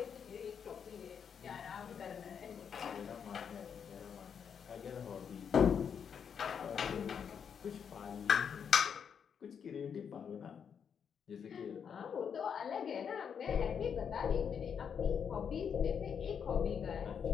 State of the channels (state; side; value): quieter; right; 7.3 dB